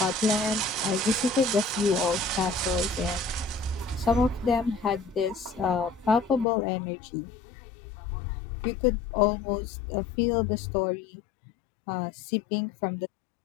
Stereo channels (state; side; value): drops out; right; at 6.5 s